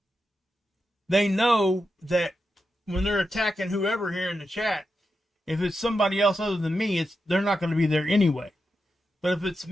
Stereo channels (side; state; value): both; normal; correlation 0.88